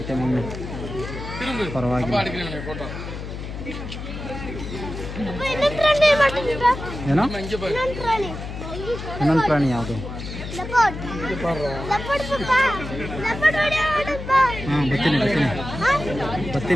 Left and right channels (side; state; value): left; noise; hum, 8 dB below the sound